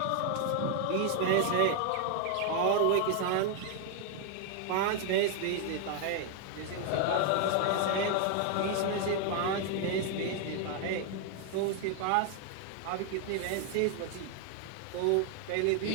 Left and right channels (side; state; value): both; different; correlation 0.00